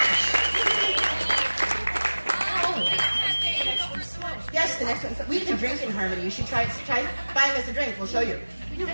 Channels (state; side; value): inverted; both; correlation -1.00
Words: Yes, the next one. We can drink in harmony. You should try buying us a drink. We'll show you. We don't